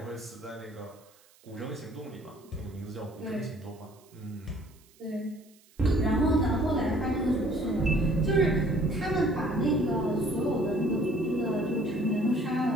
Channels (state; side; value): noise; right; hiss, 29 dB below the sound